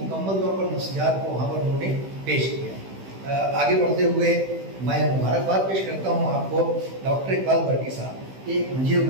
तौर पर नफ्सियात को वहाँ पर उन्होंने पेश किया है। आगे बढ़ते हुए मैं मुबारकबाद पेश करता हूँ आपको डॉक्टर इकबाल वर्की साहब, एक मंझे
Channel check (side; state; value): left; late; 16 ms